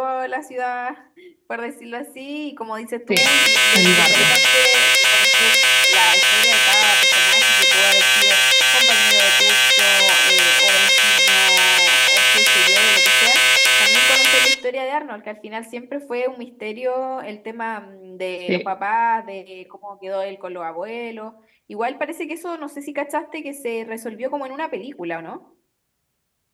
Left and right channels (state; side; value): identical; both; correlation 1.00